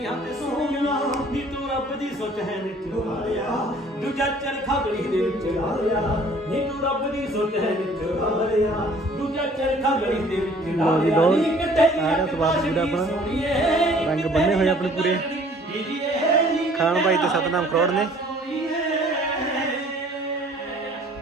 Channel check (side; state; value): both; normal; correlation 0.54